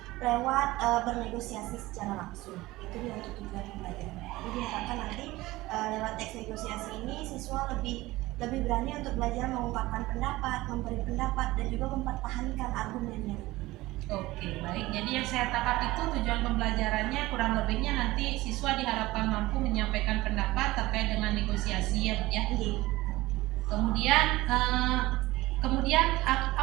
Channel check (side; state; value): left; quieter; 18.7 dB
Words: lewat bernegosiasi secara langsung. Itu dia untuk tujuan pembelajaran. Jadi diharapkan nanti lewat teks negosiasi ini siswa lebih berani untuk belajar mengungkapkan pendapat, memberi pendapat, dan juga mempertahankan argumennya. Oke, baik. Jadi yang saya tangkap itu tujuan pembelajarannya kurang lebihnya nanti siswa diharapkan mampu menyampaikan pendapat terkait dengan negosiasi ya Bu ya. Kemudian